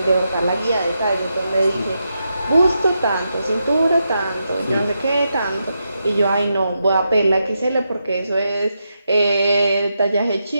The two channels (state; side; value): inverted; both; correlation -0.85